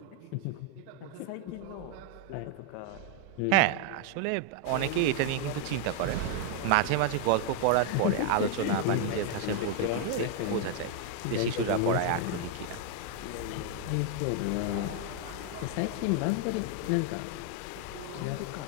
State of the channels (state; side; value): different; both; correlation 0.00